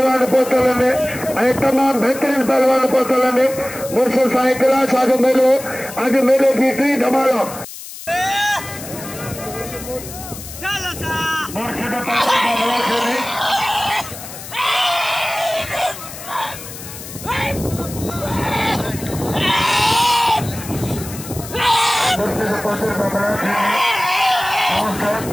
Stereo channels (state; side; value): noise; left; hiss, 13 dB below the sound